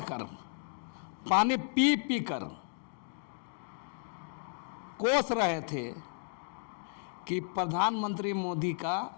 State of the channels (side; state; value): right; silent; 55 dB below the other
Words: कर, पानी पी पी कर कोस रहे थे कि प्रधानमंत्री मोदी का